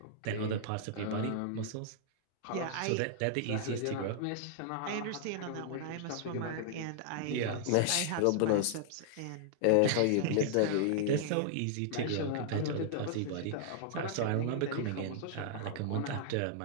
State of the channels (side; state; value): both; different; correlation -0.01